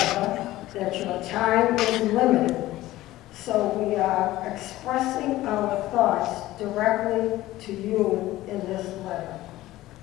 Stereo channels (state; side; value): quieter; right; 16.3 dB